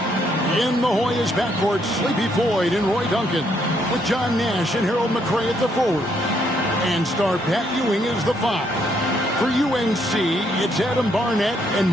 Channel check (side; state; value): both; normal; correlation 0.72